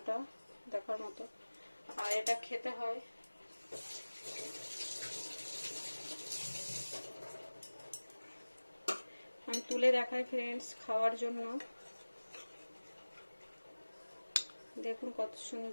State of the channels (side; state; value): both; inverted; correlation -1.00